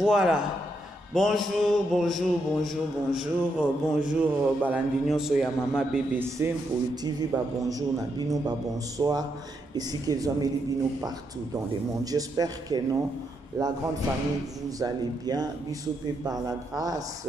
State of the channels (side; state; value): both; normal; correlation 0.80